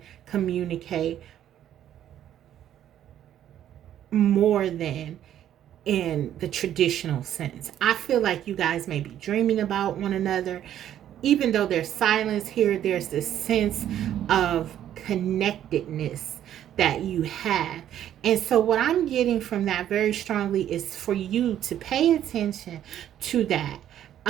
communicate more than in the traditional sense. I feel like you guys may be dreaming about one another. Even though there's silence here, there's this sense of connectedness that you have. And so what I'm getting from that very strongly is for you to pay attention to that,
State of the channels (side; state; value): left; quieter; 11.1 dB